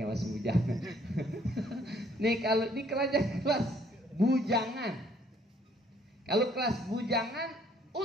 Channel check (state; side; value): normal; both; correlation 0.63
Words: yang masih bujangan. Nih kalau di kelas bujangan, kalau kelas bujangan